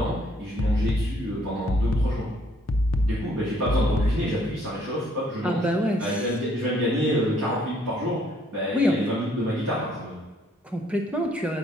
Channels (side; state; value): both; normal; correlation 0.65